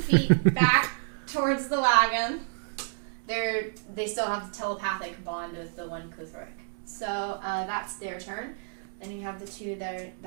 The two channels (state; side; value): silent; left; digital silence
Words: back towards the wagon. They still have the telepathic bond with the one Kuthrik. So that's their turn. Then you have the 2